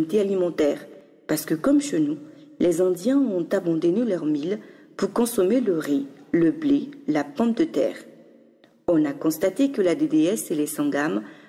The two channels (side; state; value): both; identical; correlation 1.00